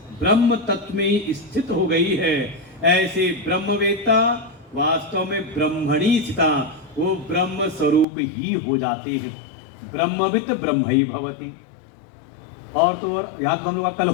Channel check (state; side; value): drops out; right; at 8.1 s